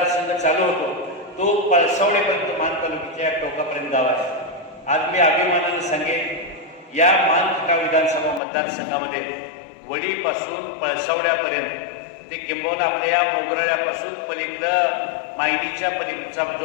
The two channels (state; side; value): drops out; right; at 8.4 s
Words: चालू होतो, तो पळसावडेपर्यंत मान तालुक्याच्या टोकापर्यंत गाव आहे. आज मी अभिमानाने सांगेन, या मानखटा विधानसभा मतदारसंघामध्ये वडीपासून पळसावड्यापर्यंत ते किंबहुना आपल्या या मोगराळ्यापासून पलीकडं मायनीच्या पलीकडचा